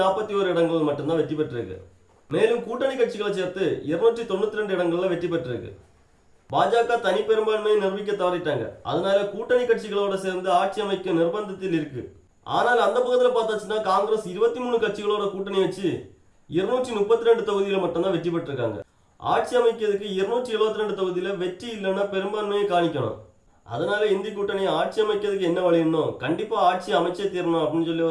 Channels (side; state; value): both; identical; correlation 1.00